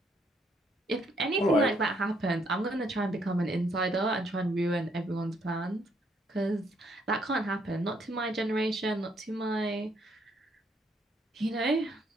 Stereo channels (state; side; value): normal; both; correlation 0.70